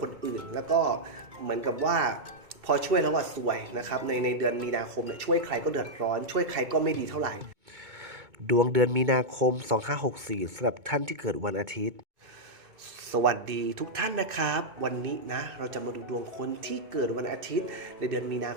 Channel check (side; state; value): left; late; 2.2 ms